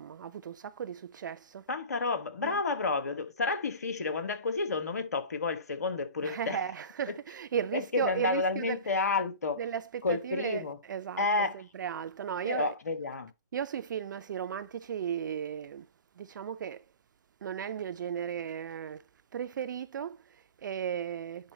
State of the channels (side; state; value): both; inverted; correlation -0.35